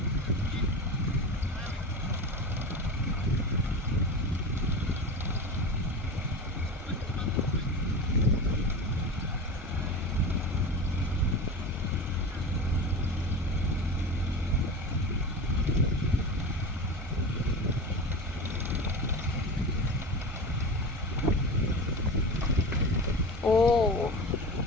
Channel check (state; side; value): normal; both; correlation 0.28